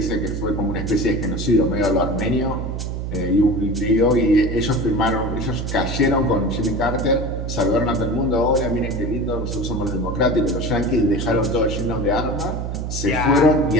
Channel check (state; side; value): noise; right; hum, 4 dB below the sound